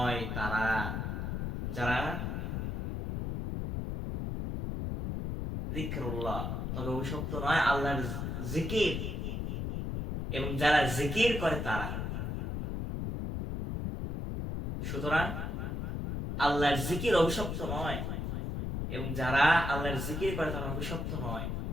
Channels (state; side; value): noise; left; rumble, 3 dB below the sound